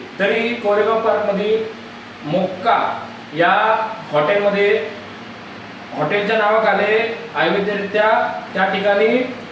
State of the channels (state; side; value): identical; both; correlation 1.00